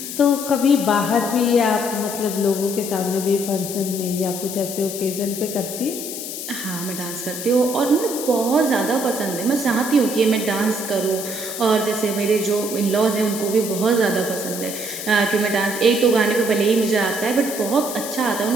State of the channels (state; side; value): noise; left; hiss, 7 dB below the sound